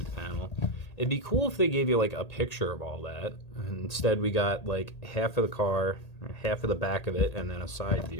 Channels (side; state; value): right; late; 1.8 ms